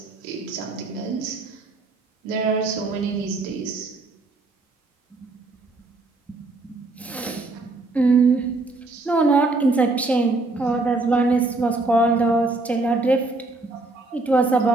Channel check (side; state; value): left; quieter; 3.3 dB